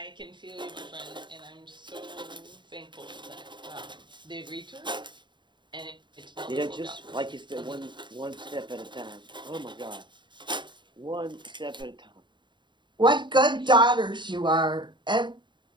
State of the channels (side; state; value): left; late; 0.23 ms